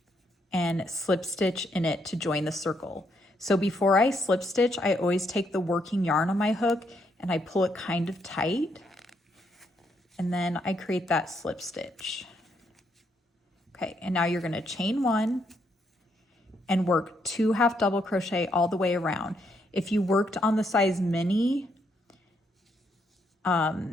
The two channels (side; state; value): both; normal; correlation 0.75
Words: and slip stitch in it to join the circle. So before I slip stitch, I always take the working yarn on my hook and I pull it kind of tight, and then I create that slip stitch. Okay, and now you're going to chain 1 and work 2 half double crochet all the way around. If you worked on the size mini,